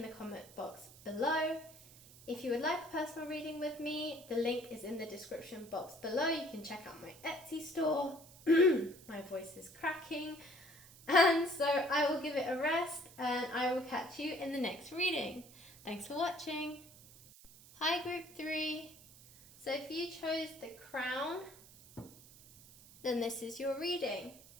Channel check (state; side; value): noise; right; hiss, 21 dB below the sound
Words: the comment box below. If you would like a personal reading with me, the link is in the description box below. You can check out my Etsy store. My voice is cracking. And so I will give it a rest, and I will catch you in the next reading. Thanks for watching. Hi, group 3. So if you chose the crown, then this is your reading.